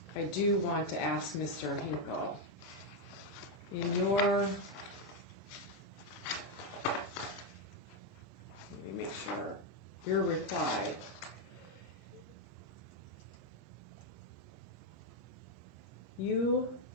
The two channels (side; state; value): both; normal; correlation 0.02